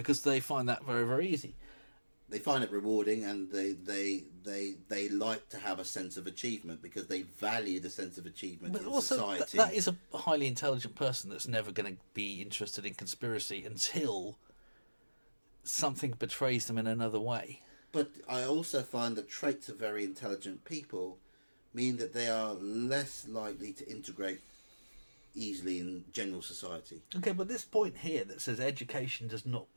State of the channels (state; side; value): inverted; both; correlation -1.00